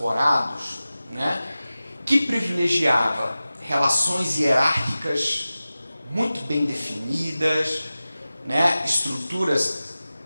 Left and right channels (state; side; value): inverted; both; correlation -0.96